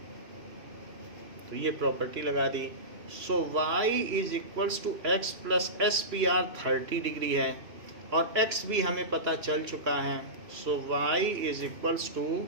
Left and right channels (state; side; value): late; left; 3.0 ms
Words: तो ये प्रॉपर्टी लगा दी। So y is equals to x plus SPR 30 degree है और x भी हमें पता चल चुका है। So y is equals to